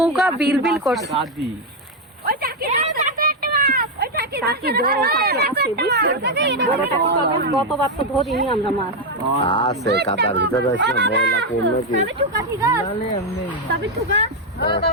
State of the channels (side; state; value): both; normal; correlation 0.03